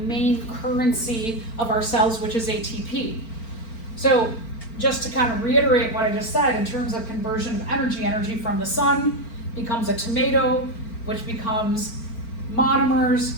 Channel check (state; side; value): late; right; 4.4 ms